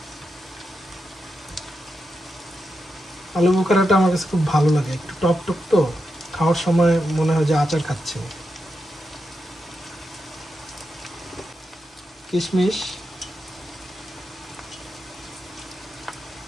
আলু বোখারাটা আমার কাছে খুব ভালো লাগে, একটু টক টক তো, খাওয়ার সময় মনে হয় যে আচার খাচ্ছে। কিশমিশ,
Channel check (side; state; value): both; normal; correlation 0.87